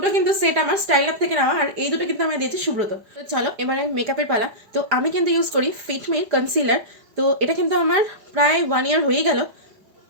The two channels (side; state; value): left; late; 4.9 ms